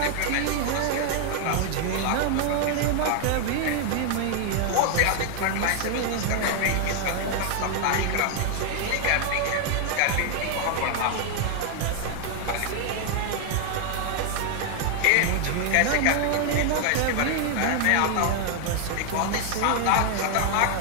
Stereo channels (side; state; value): both; different; correlation 0.00